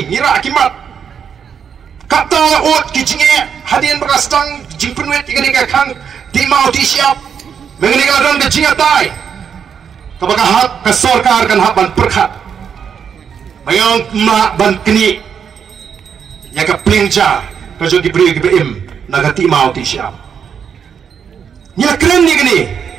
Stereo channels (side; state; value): left; quieter; 7.4 dB